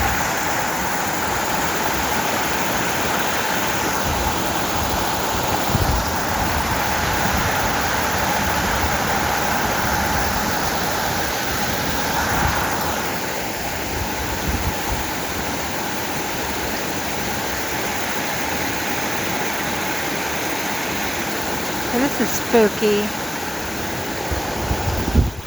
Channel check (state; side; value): normal; both; correlation 0.97